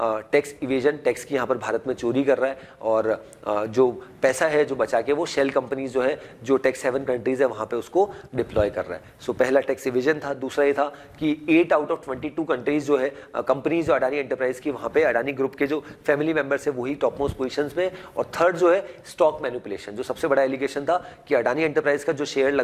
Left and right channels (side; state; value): both; identical; correlation 1.00